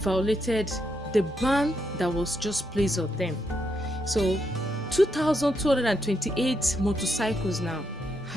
the ban that was just placed on them. So 2,228 motorcycles now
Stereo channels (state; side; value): normal; both; correlation 0.80